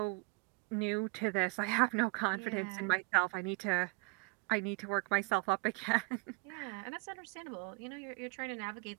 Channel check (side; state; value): left; quieter; 30.1 dB